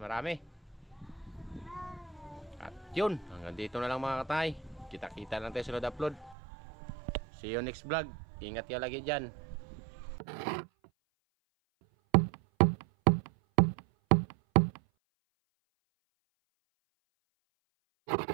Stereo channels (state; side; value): drops out; left; at 6.4 s